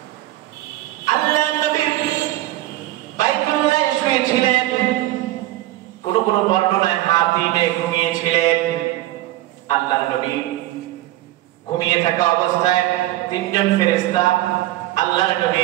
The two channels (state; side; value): quieter; left; 16.0 dB